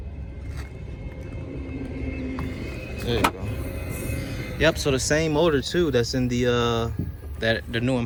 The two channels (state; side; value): identical; both; correlation 1.00